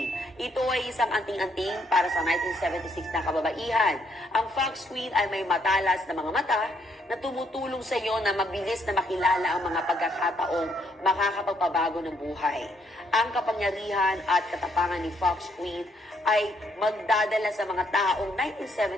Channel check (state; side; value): normal; both; correlation 0.72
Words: Ito ay isang anting-anting para sa 1976 na kababaihan. Ang Fox Queen ay may matalas na mga mata na tumutulong sa iyo na mabilis na makilala ang mga pagkakataong makakapagpabago ng buhay. Ang kapangyarihan at katapangan ni Fox Queen ay magdadala sa mga taong